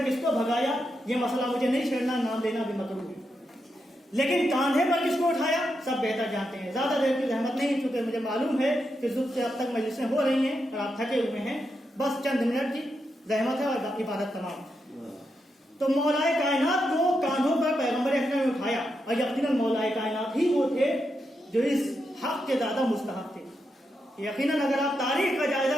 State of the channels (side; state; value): both; normal; correlation 0.84